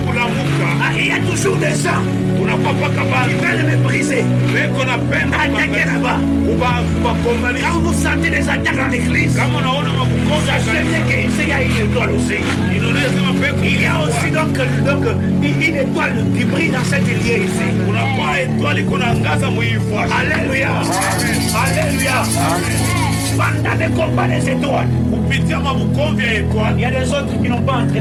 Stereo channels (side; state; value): both; identical; correlation 1.00